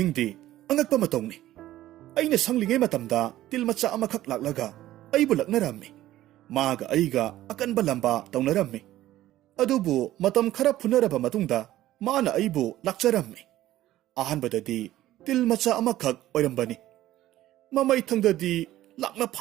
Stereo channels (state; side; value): quieter; left; 14.5 dB